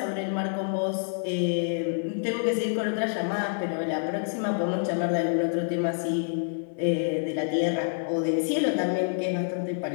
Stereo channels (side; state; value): right; silent; digital silence